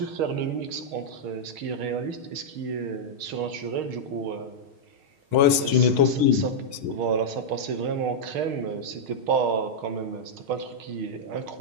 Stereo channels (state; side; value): late; left; 6.4 ms